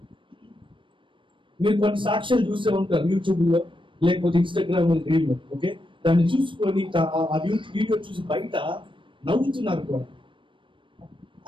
మీరు కొన్ని సాక్ష్యాలు చూసే ఉంటారు యూట్యూబ్ లో, లేకపోతే ఇన్స్టాగ్రామ్ రీల్ లో. ఓకే, దాన్ని చూసుకొని ఆ వీడియో చూసి బయట నవ్వుతున్నారు కూడా.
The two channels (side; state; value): left; late; 0.24 ms